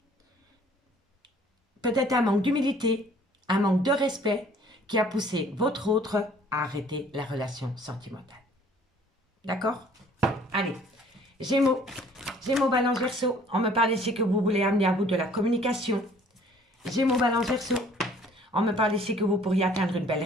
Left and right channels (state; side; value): normal; both; correlation 0.56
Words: peut-être un manque d'humilité, un manque de respect qui a poussé votre autre à arrêter la relation sentimentale. D'accord? Allez, Gémeaux, Gémeaux, Balance, Verseau. On me parle ici que vous voulez amener à vous de la communication. Gémeaux, Balance, Verseau. On me parle ici que vous pourriez atteindre une belle